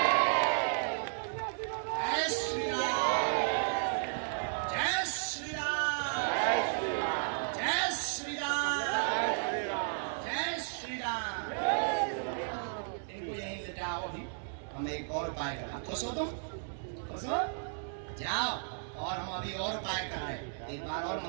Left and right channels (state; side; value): silent; left; digital silence